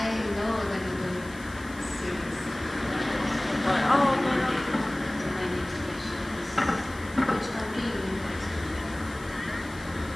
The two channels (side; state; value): left; noise; hiss, 20 dB below the sound